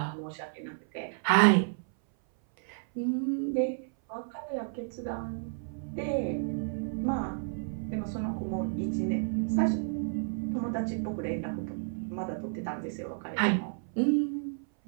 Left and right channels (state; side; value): silent; left; 57 dB below the other